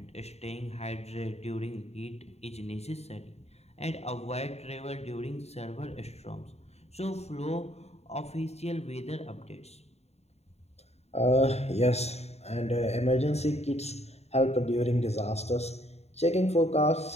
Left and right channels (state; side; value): late; right; 0.31 ms